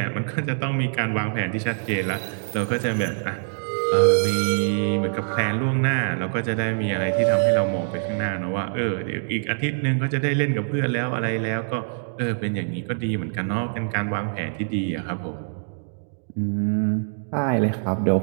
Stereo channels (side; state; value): left; silent; digital silence